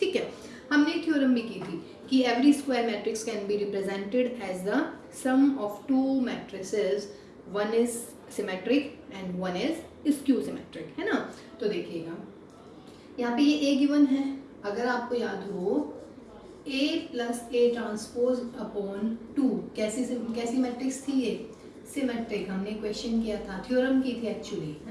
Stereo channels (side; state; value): both; identical; correlation 1.00